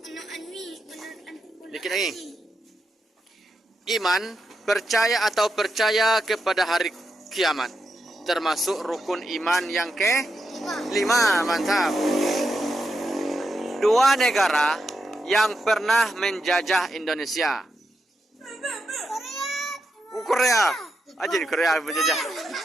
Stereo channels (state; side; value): normal; both; correlation 0.85